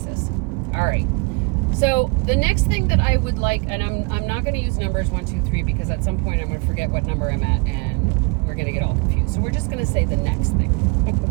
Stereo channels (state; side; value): quieter; left; 30.1 dB